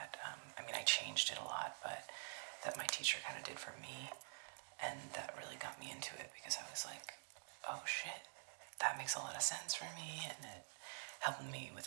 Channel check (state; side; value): silent; left; digital silence